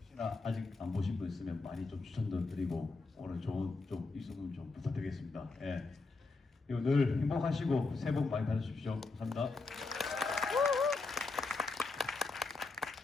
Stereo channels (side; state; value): right; quieter; 3.7 dB